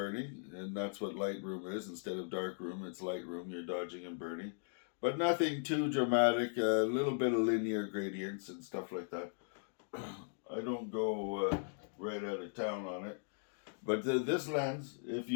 and that's what Lightroom is. Instead of darkroom, it's Lightroom. You're dodging and burning, but nothing too dramatic. A little bit of linear gradients and stuff like that. I don't go right out of town on it. But this lens, if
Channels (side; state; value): right; silent; digital silence